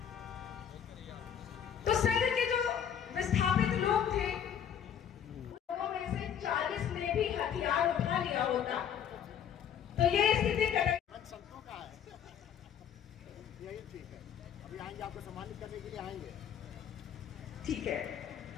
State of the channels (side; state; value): right; quieter; 8.6 dB